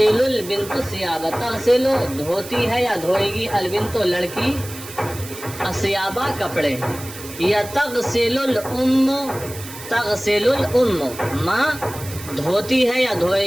البنت الثیاب، تغسل دھوتی ہے یا دھوئے گی، البنت لڑکی، الثیابہ کپڑے، یا تغسل الام، تغسل الام ماں دھوتی ہے یا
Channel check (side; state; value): right; noise; hiss, 14 dB below the sound